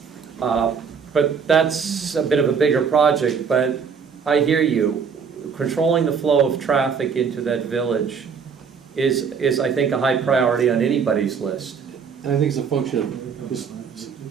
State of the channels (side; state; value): left; quieter; 6.2 dB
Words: But that's a bit of a bigger project, but I hear you. Controlling the flow of traffic into that village is I think, a high priority on anybody's list. And I think it's a function of just